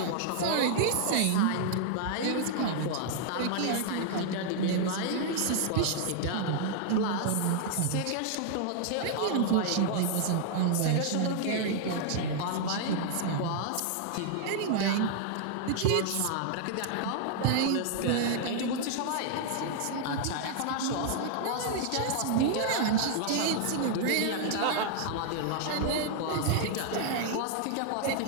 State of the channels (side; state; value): both; different; correlation -0.01